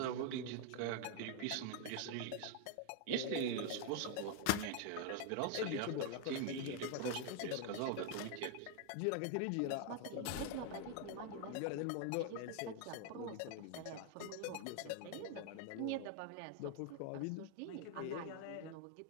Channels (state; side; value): different; both; correlation 0.00